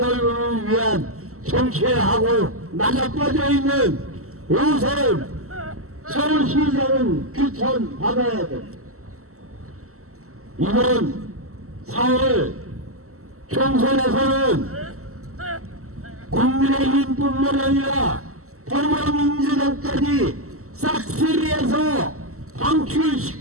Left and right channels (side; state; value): left; late; 0.63 ms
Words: 위한 정치하고 나자빠져 있는 오세훈 서울시장은 규탄 받아야 돼. 이번 4월 총선에서는 국민의힘뿐만 아니라 더불어민주당까지 싹쓸이해서